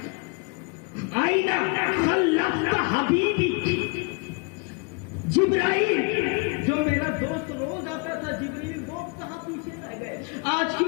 آئینہ خلقت حبیبی جبرائیل، جو میرا دوست روز آتا تھا جبریل، وہ کہاں پیچھے رہ گئے، آج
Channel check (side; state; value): right; quieter; 32.2 dB